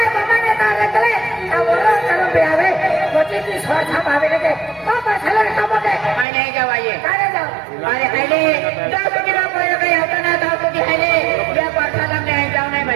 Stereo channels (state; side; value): drops out; left; at 6.2 s